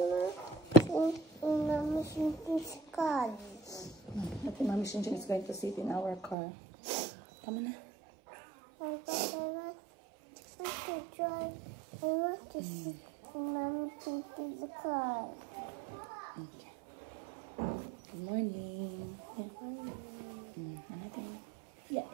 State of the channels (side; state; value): left; drops out; at 6.4 s